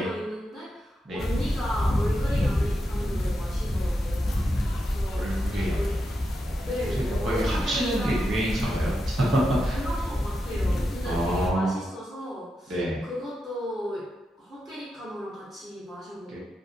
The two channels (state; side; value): normal; both; correlation 0.87